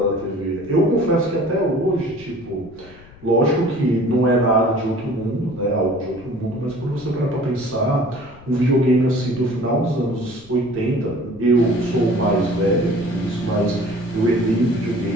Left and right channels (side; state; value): left; noise; rumble, 22 dB below the sound